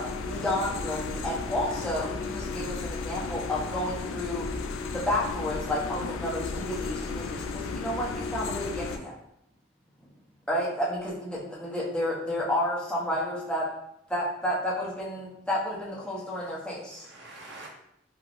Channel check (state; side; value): normal; both; correlation 0.34